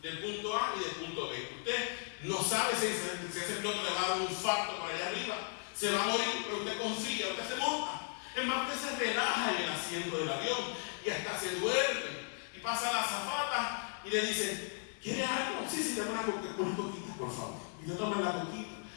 del punto A y del punto B. Usted no sabe si ese piloto le va a dar un infarto por allá arriba, se va a morir, pero usted confía, usted se monta. Es más, usted se relaja en el asiento del avión y hasta se duerme. Y pasa la azafata y le dice, ¿quiere algo? Sí, dame una coquita, por favor. Y yo tomo la coquita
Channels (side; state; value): right; silent; 54 dB below the other